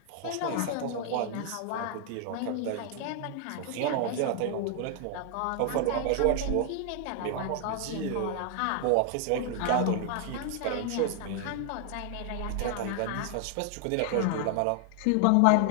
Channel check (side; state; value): both; different; correlation 0.00